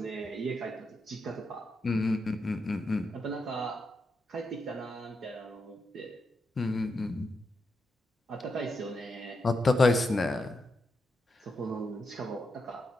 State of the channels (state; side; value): normal; both; correlation 0.84